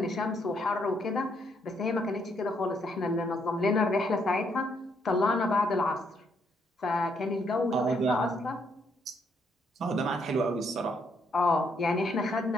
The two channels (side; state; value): both; normal; correlation 0.73